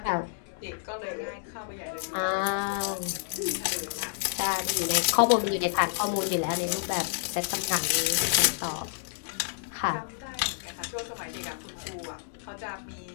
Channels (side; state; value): right; silent; digital silence